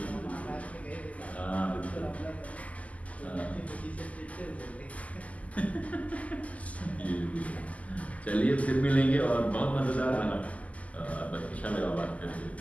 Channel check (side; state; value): right; late; 0.071 ms